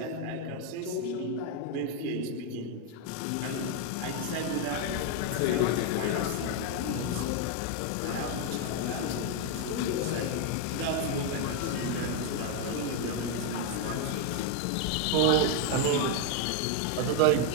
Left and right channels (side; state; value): both; different; correlation 0.01